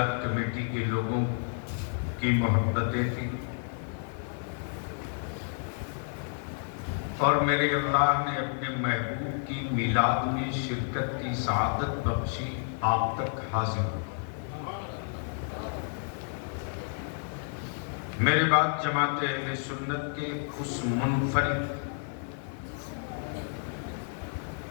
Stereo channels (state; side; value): silent; right; 58 dB below the other